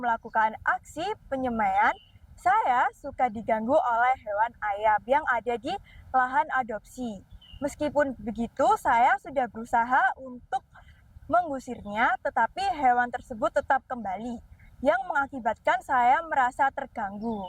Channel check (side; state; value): both; identical; correlation 1.00